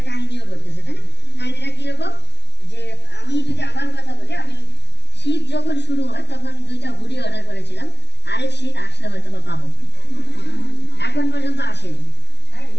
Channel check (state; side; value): late; right; 0.50 ms